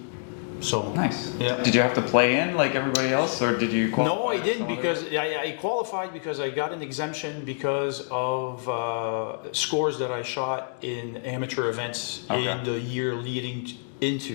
So nice. Yeah. Did you have to play in like everybody else, or did you qualify? No, I didn't, because I qualified because I got an exemption because of scores that I shot in amateur events in the year leading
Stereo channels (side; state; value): right; silent; digital silence